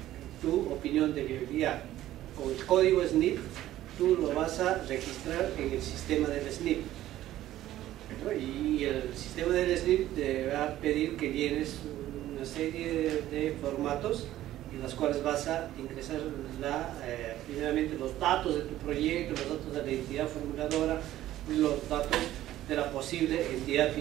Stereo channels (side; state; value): left; quieter; 13.9 dB